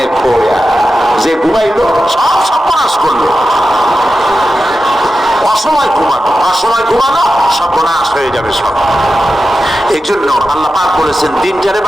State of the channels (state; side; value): normal; both; correlation 0.92